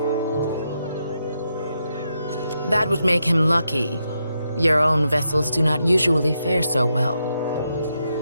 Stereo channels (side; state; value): both; inverted; correlation -0.83